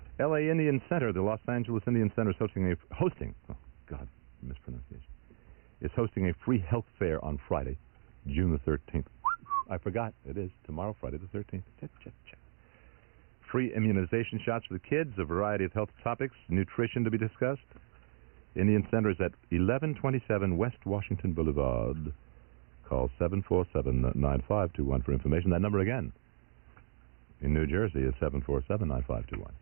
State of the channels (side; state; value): left; silent; 55 dB below the other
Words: L.A. Indian Center, the Los Angeles Indian Center is hosting a free health fair on Friday, June the 13th. I forgot, it is tomorrow, Friday the 13th. Free immunization shots for the kids, a variety of health topics, nutrition to be discussed. Indian Center is at 1127 West Washington Boulevard. Call 747-9521 for information. That number again in New Jersey is 747-9521.